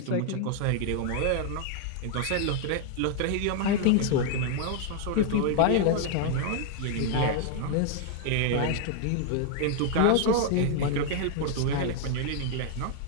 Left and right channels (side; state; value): both; different; correlation 0.00